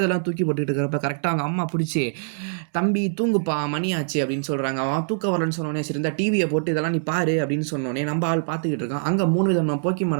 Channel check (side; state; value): left; silent; digital silence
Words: தூக்கி போட்டுக்கிட்டு இருக்கிறப்ப கரெக்டாக அவங்க அம்மா பிடிச்சி, தம்பி தூங்குப்பா மணி ஆச்சு அப்படின்னு சொல்கிறாங்க. அவன் தூக்க வரலன்னு சொன்னோன்னே, சரி இந்த டிவியை போட்டு இதெல்லாம் நீ பாரு அப்படின்னு சொன்னோன்னே நம்ம ஆள் பார்த்துக்கிட்டு இருக்கான். அங்கே 3 விதமான